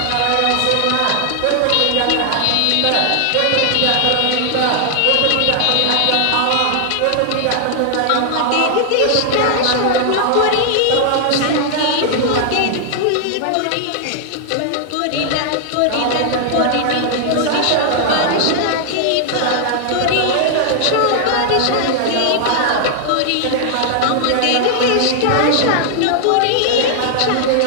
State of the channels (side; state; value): both; different; correlation 0.00